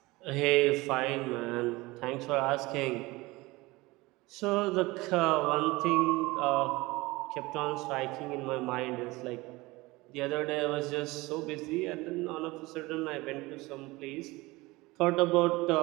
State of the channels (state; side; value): quieter; left; 21.5 dB